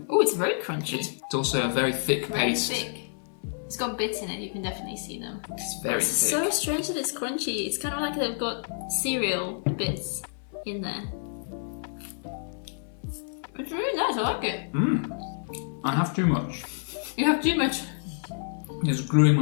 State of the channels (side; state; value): right; silent; 59 dB below the other